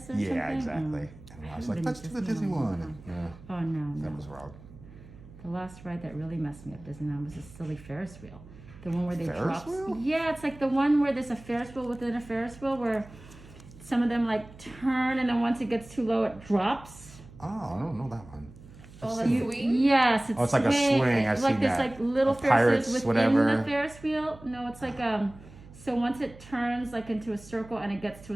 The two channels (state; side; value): noise; right; hum, 20 dB below the sound